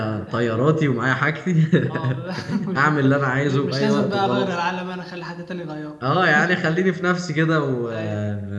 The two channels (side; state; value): both; identical; correlation 1.00